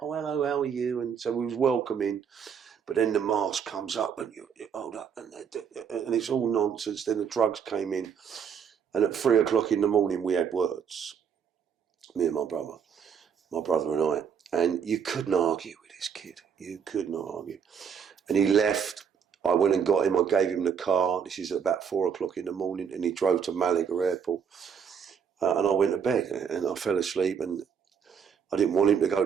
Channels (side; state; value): left; quieter; 7.1 dB